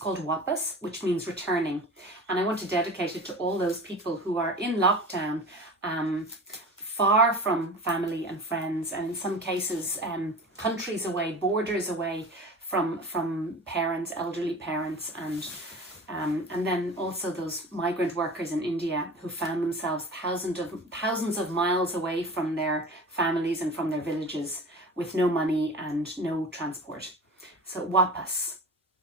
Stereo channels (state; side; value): normal; both; correlation 0.36